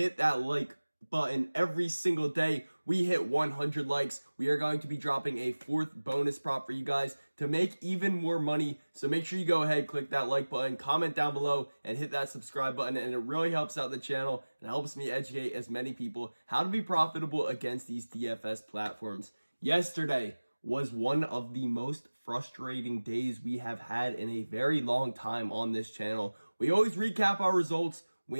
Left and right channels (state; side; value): inverted; both; correlation -1.00